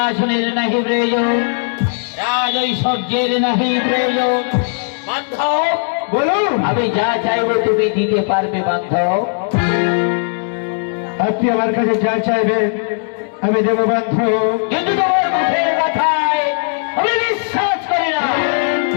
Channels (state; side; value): silent; right; digital silence